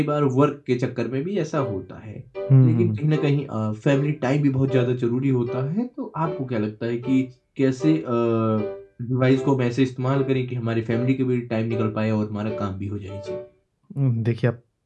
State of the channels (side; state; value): both; identical; correlation 1.00